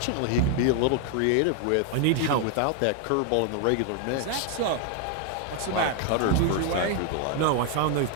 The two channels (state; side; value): different; both; correlation 0.00